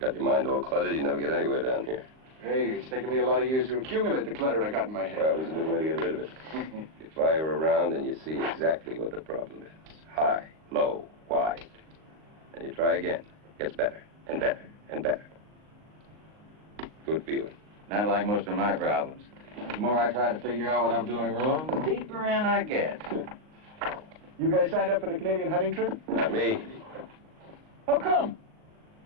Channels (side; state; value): left; late; 38 ms